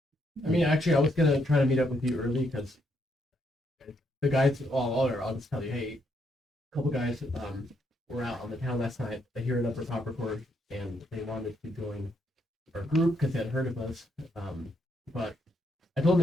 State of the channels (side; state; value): both; normal; correlation 0.76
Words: mean, actually, I was gonna try to meet up with you early because the guys. I'll just tell you, hey, a couple guys were out on the town last night. They hear an upper top record, and they wanted to join our group because they had heard of us. But I told